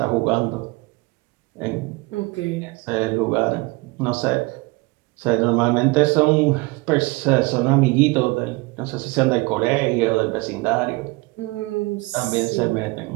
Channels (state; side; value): quieter; left; 24.3 dB